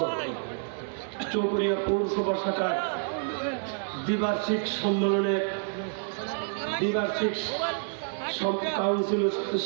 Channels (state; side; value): silent; left; digital silence